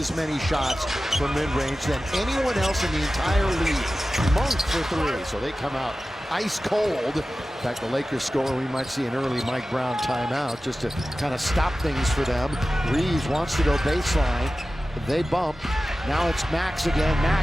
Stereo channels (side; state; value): both; normal; correlation 0.95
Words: many shots from mid-range than anyone else in the entire league. Monk for 3. So they come out ice cold. In fact, the Lakers score. We might see an early Mike Brown timeout just to kind of stop things for them. Reeves wants to go baseline. They bump. Now it's Max again.